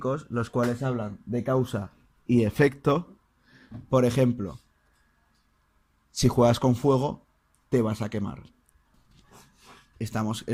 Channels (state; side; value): identical; both; correlation 1.00